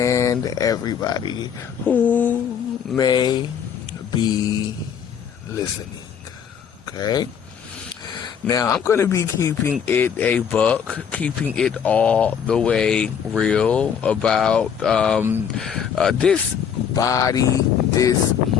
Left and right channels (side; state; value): right; quieter; 7.7 dB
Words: everybody who may be listening? Okay? Now, I'm going to be keeping it a buck, keeping it all the way real about this body